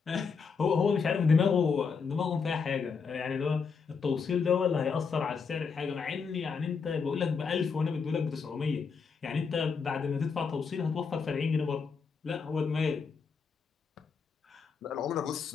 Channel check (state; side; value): quieter; right; 5.5 dB